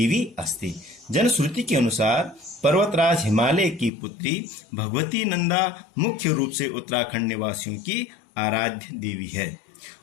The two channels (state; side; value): drops out; right; at 3.9 s